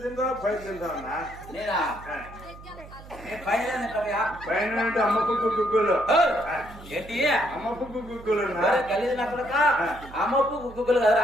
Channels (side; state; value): right; noise; hum, 17 dB below the sound